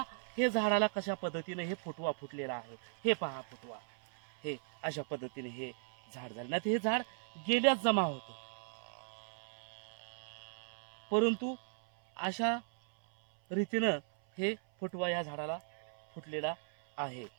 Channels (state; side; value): silent; left; 53 dB below the other